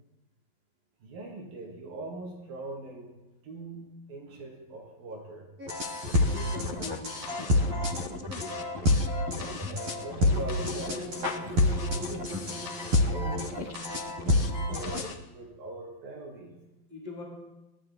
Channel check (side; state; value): left; late; 11 ms